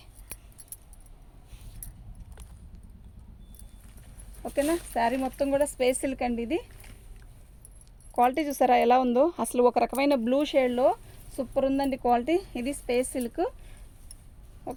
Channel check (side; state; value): both; identical; correlation 1.00